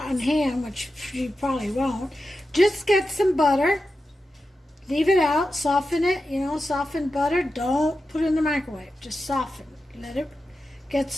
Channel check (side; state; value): both; normal; correlation 0.91